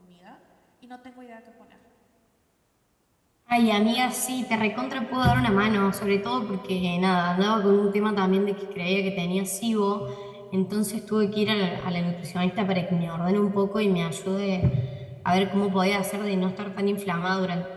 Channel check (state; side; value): identical; both; correlation 1.00